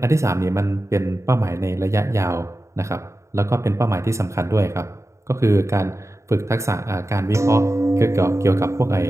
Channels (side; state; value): left; late; 0.14 ms